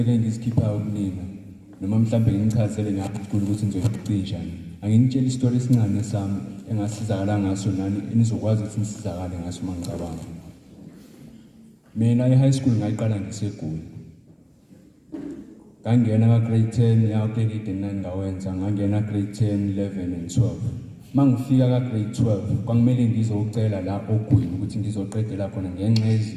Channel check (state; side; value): identical; both; correlation 1.00